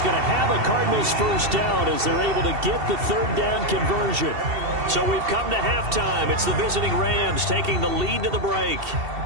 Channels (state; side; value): late; left; 2.7 ms